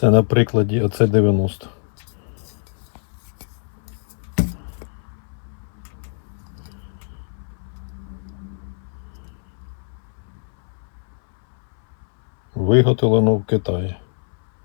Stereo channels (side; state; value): right; silent; 63 dB below the other